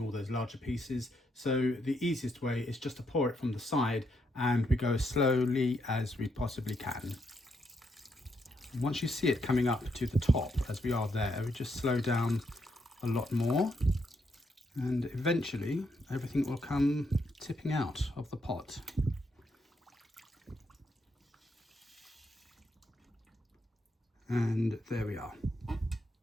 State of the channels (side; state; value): both; normal; correlation 0.78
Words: all those larger pieces. So the easiest way is just to pour it from the side, and we go as slowly as we possibly can. Once you see it coming up to the top, as we are there, we just slow down a lot more, and eventually everything will come tipping out of the pot. And there we are.